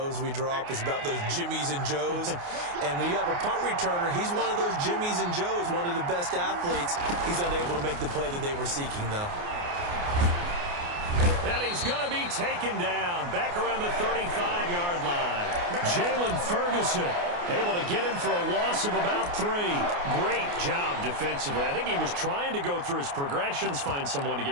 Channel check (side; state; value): left; late; 29 ms